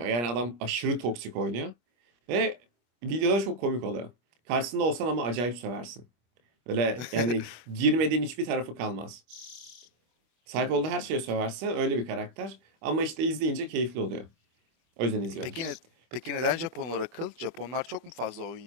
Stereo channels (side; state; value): left; late; 25 ms